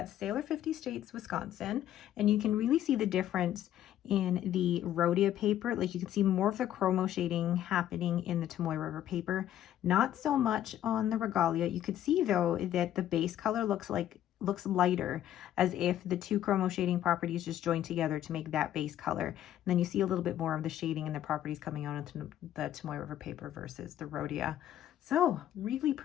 Sailor 50 States, Wisconsin. And you can really see the difference in the Rhodia paper. Like you can see more of the chromo shading happening in the Tomoe River paper. Not so much on the Regalia. You could see though that the base color looks lighter, as if the two chromo shading properties just joined together to make that base color. And then you see a little bit more of the shading and the properties coming out into the Tomoe River paper versus the Rhodia. So really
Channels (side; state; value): right; quieter; 11.7 dB